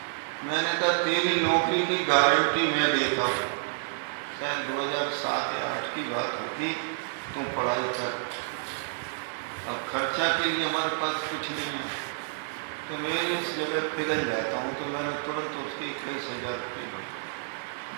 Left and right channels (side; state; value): left; silent; digital silence